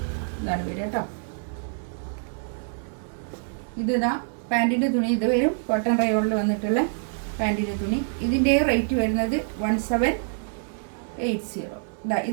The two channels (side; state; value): left; silent; 61 dB below the other